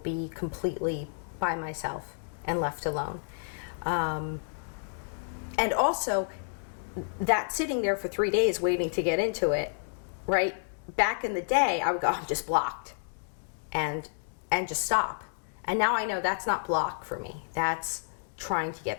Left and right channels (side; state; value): right; silent; digital silence